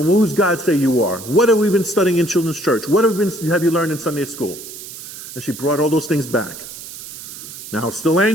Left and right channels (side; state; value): right; noise; hiss, 13 dB below the sound